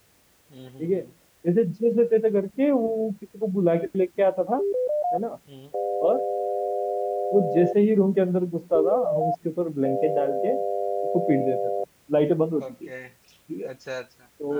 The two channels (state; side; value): identical; both; correlation 1.00